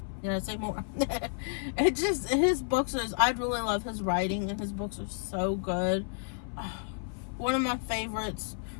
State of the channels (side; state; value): right; silent; 57 dB below the other